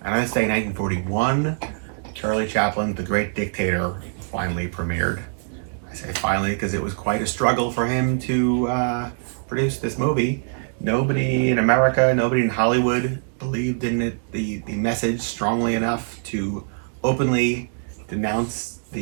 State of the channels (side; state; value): left; silent; digital silence